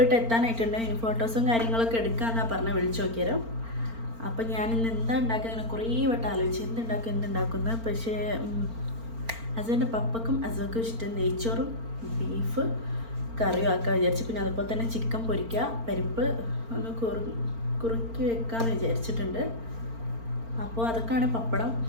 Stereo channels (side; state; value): left; late; 4.4 ms